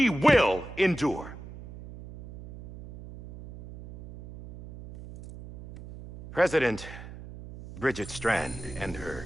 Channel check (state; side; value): noise; right; hum, 13 dB below the sound